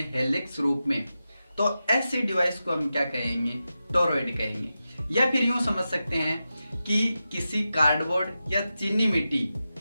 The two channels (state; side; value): inverted; both; correlation -0.91